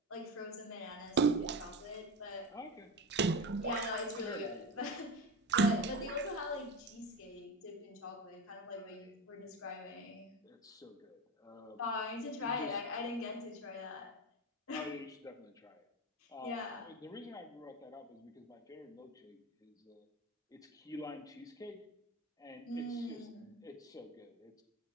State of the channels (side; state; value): both; normal; correlation 0.23